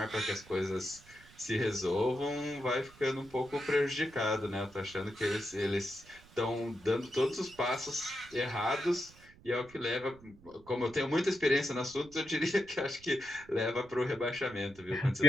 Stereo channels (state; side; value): noise; right; rumble, 23 dB below the sound